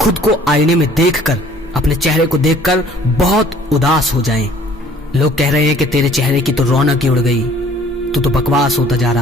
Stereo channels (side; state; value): both; normal; correlation 0.55